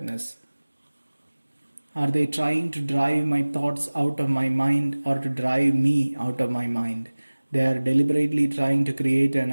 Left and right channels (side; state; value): both; inverted; correlation -1.00